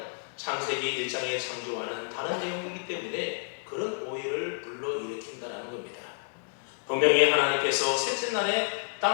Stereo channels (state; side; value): silent; right; digital silence